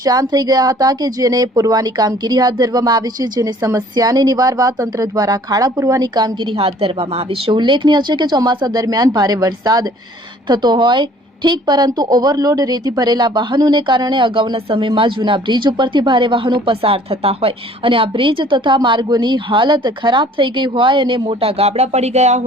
થઈ ગયા હતા કે જેને પૂરવાની કામગીરી હાથ ધરવામાં આવી છે, જેની સમસ્યાને નિવારવા તંત્ર દ્વારા ખાડા પૂરવાની કામગીરી હાથ ધરવામાં આવી છે। ઉલ્લેખનીય છે કે ચોમાસા દરમિયાન ભારે વરસાદ થતો હોય ઠીક, પરંતુ ઓવરલોડ રેતી ભરેલા વાહનોને કારણે અગાઉના સમયમાં જૂના બ્રિજ ઉપરથી ભારે વાહનો પસાર થતા હોય અને આ બ્રિજ તથા માર્ગોની હાલત ખરાબ થઈ ગઈ હોય અને મોટા ગાબડા પડી ગયા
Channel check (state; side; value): normal; both; correlation 0.54